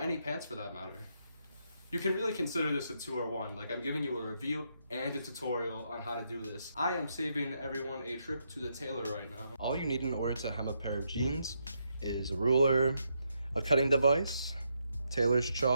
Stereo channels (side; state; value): both; inverted; correlation -0.79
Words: pants for that matter. You can really consider this a 2-or-1, like I'm giving you a review and a tutorial on how to do this. I am saving everyone a trip to the tailor right now. All you need in order to hem a pair of jeans is a ruler, a cutting device, tailor's